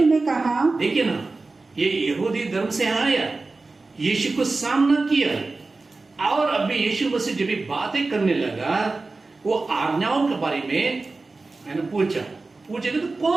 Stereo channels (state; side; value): quieter; left; 3.6 dB